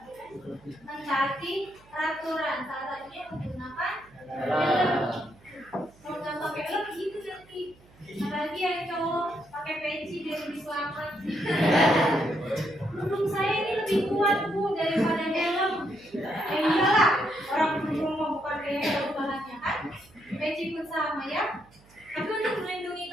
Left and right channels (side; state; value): right; noise; hum, 27 dB below the sound